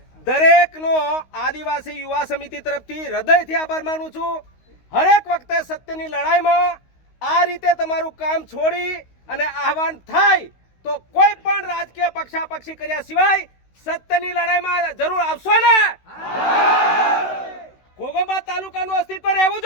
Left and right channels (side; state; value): right; late; 16 ms